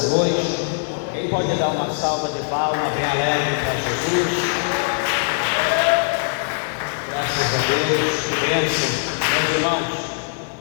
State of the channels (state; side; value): silent; right; digital silence